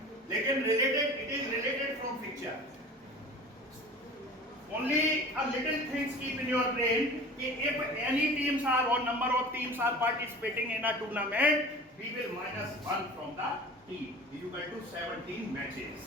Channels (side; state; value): both; normal; correlation 0.39